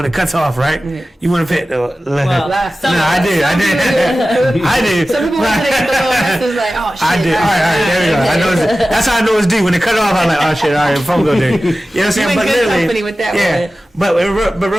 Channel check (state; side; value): normal; both; correlation 0.95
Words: it cuts off, right? You want to pay it. I did. Some people want to get the little message like, oh shit. I did. All right, there we go. I know that's how I know it's due. When it cut off, I'm like, oh shit, all right, phone bill due. You know what I'm saying? But good company with that one. But